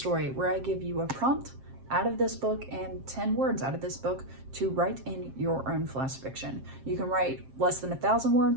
where I give you a prompt out of this book and 10 words out of this book to write in your own flash fiction. You can write less than 1,000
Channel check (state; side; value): late; left; 7.5 ms